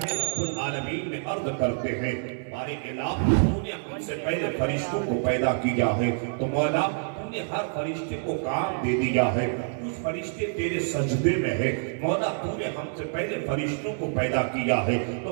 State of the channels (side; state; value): left; silent; digital silence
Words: رب العالمین میں عرض کرتے ہیں، بارے الہ تو نے ہم سے پہلے فرشتوں کو پیدا کیا ہے، تو مولا تو نے ہر فرشتے کو کام دے دیا ہے، کچھ فرشتے تیرے سجدے میں ہے. مولا تو نے ہم سے پہلے فرشتوں کو پیدا کیا ہے،